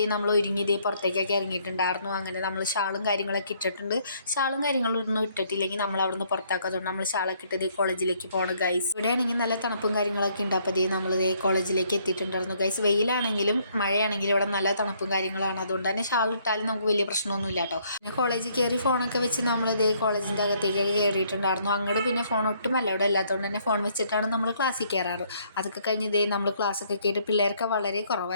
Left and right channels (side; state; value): both; inverted; correlation -0.67